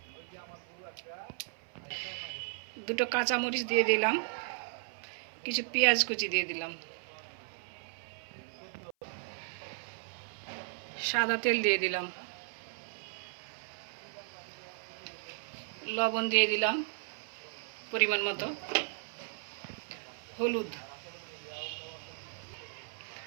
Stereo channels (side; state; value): left; silent; 54 dB below the other